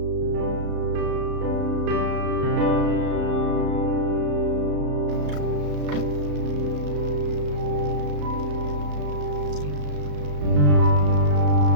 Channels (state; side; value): late; left; 34 ms